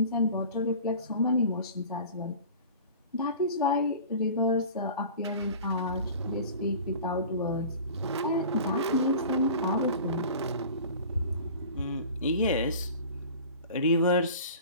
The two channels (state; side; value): inverted; both; correlation -0.41